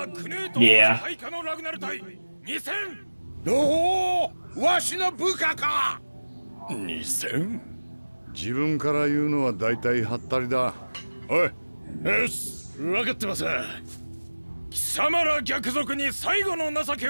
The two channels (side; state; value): both; inverted; correlation -1.00